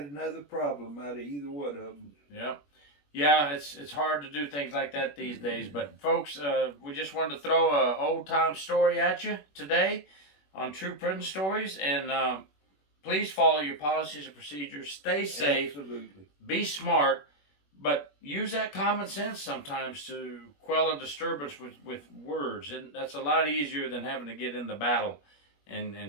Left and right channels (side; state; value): right; late; 21 ms